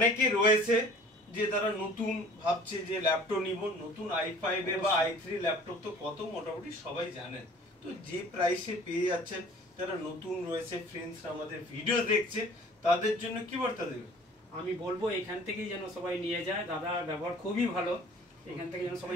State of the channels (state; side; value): normal; both; correlation 0.49